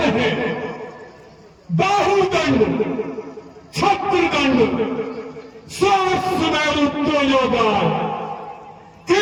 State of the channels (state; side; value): identical; both; correlation 1.00